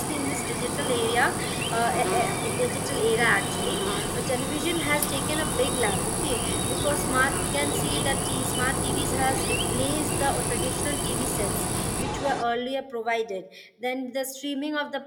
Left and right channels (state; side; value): identical; both; correlation 1.00